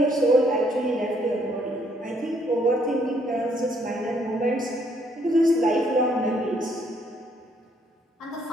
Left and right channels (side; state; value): both; normal; correlation 0.68